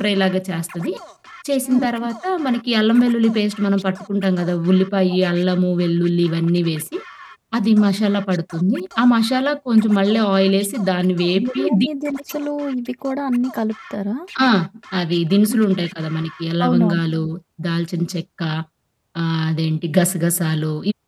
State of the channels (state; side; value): identical; both; correlation 1.00